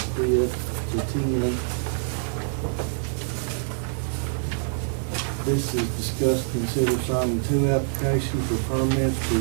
bid to 10. This is discuss, consider signing 2 applications for permits for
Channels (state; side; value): silent; left; 57 dB below the other